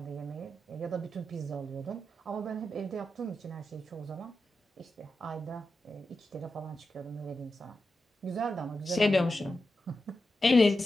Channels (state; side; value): normal; both; correlation 0.90